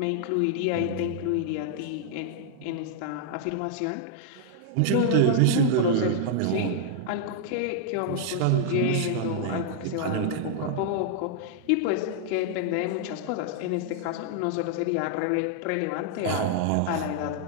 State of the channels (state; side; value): different; both; correlation -0.01